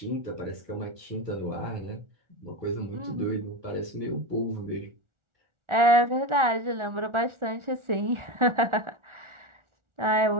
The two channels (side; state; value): left; late; 1.4 ms